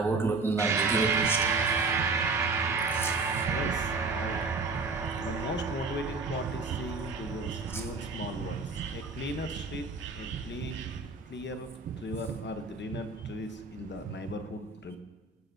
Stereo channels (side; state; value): left; quieter; 3.9 dB